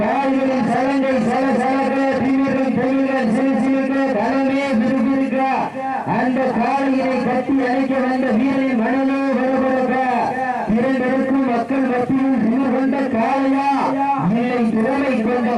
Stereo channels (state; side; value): identical; both; correlation 1.00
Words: கால்களின் சலங்கை சல சலக்க தீவிரம் தொழில்கள் சிறுசிறுக்க களமே விறுவிறுக்க அந்த காலையினை கட்டி அழைக்க வந்த வீரரின் மனநோ வரவழக்க இரண்டருக்கும் மக்கள் மத்தியில் திமிர் கொண்ட காளையா இல்லை திறமை கொண்ட